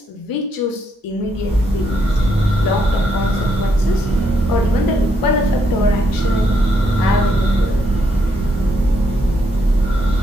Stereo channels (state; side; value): normal; both; correlation 0.76